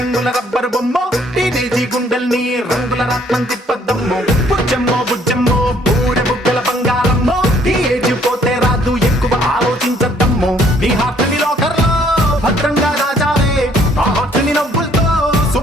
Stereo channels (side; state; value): both; normal; correlation 0.63